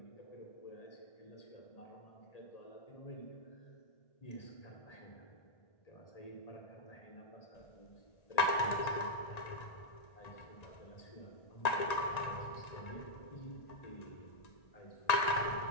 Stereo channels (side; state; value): right; late; 1.9 ms